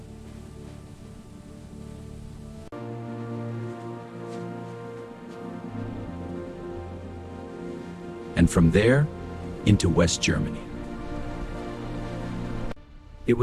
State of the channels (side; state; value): both; identical; correlation 1.00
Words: And from there, into West Germany. It